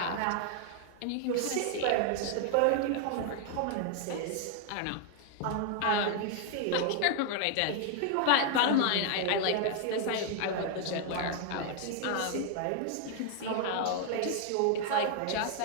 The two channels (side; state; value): both; different; correlation 0.00